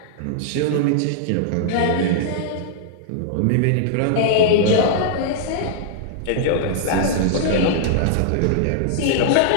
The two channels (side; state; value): both; different; correlation -0.02